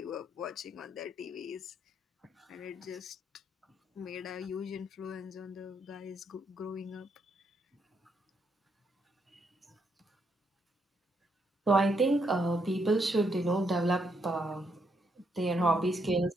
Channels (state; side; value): normal; both; correlation 0.76